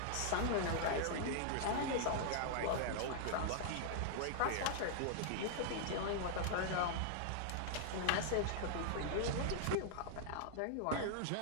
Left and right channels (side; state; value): both; different; correlation -0.01